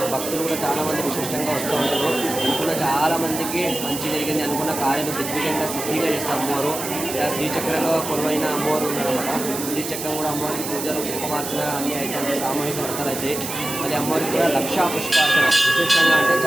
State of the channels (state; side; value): noise; right; hiss, 6 dB below the sound